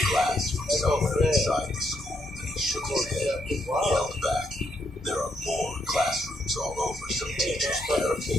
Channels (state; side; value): normal; both; correlation 0.76